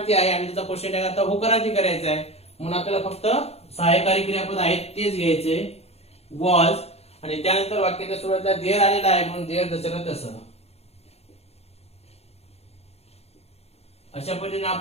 आहे आणि त्याचा क्वेश्चन टॅग आता होकारार्थी करायचा आहे. म्हणून आपल्याला फक्त सहाय्यकारी क्रियापद आहेत तेच घ्यायचे, वॉज, आणि त्यानंतर वाक्याच्या सुरुवातीला देर आलेला आहे म्हणून देर जसं तसं. अशा पद्धतीने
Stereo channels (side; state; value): right; late; 0.30 ms